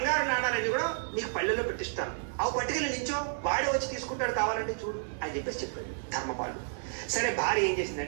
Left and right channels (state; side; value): silent; left; 57 dB below the other